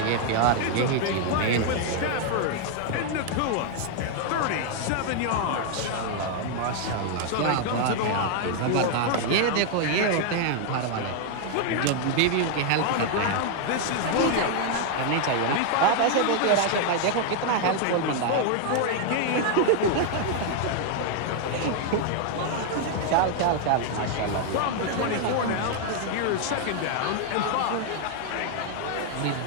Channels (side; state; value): both; different; correlation 0.00